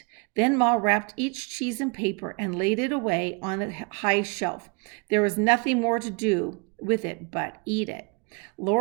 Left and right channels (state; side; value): quieter; left; 31.8 dB